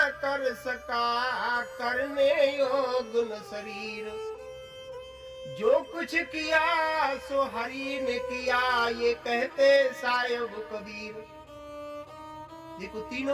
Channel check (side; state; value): both; identical; correlation 1.00